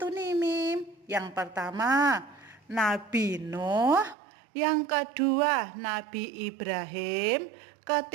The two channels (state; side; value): drops out; left; at 4.2 s